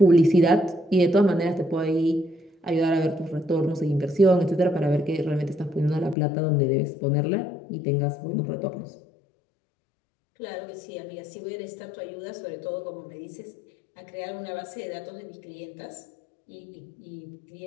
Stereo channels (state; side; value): drops out; right; at 6.2 s